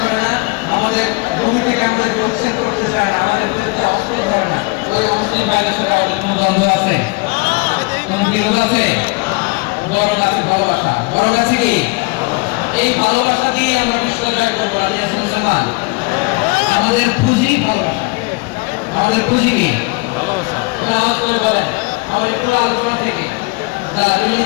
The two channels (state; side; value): quieter; right; 26.9 dB